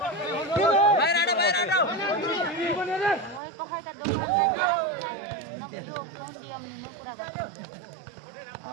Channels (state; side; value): drops out; left; at 3.4 s